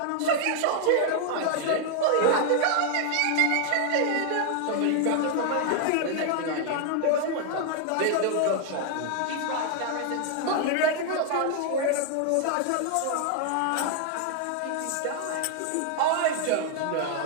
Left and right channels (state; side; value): different; both; correlation 0.00